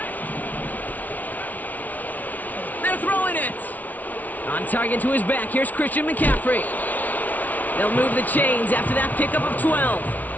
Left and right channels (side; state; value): right; late; 0.076 ms